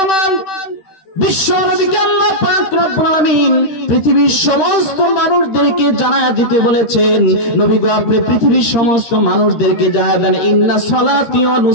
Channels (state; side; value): late; right; 13 ms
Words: আমার, বিশ্ব নবীকে আল্লাহ পাক রব্বুল আলামিন পৃথিবীর সমস্ত মানুষদেরকে জানায়া দিতে বলেছেন, নবী গো আপনি পৃথিবীর সমস্ত মানুষদেরকে জানায়া দেন, ইন্না সালাতি ওয়া